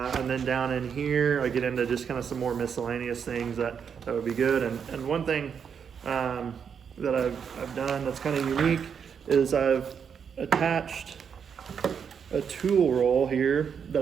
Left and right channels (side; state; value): left; quieter; 7.1 dB